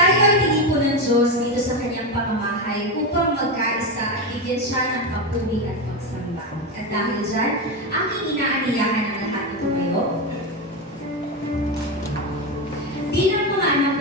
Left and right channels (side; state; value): both; normal; correlation 0.14